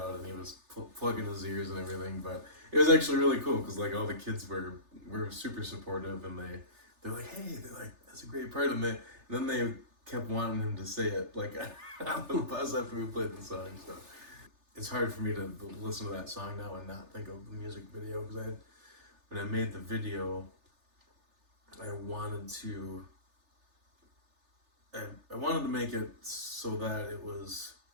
and he was plugging his ears and everything. But it was actually really cool because all the kids were super supportive, and they're like, hey, that's a great part, and then they kept wanting him to say it on the bus after we played the song. So it's hard for me to listen to that song now and not think of the music video, because when I made the video, I wanted to make it so that it was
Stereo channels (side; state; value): left; late; 3.3 ms